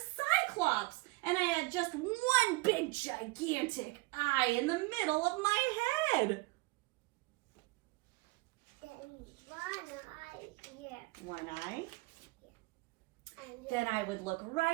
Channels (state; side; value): quieter; left; 23.8 dB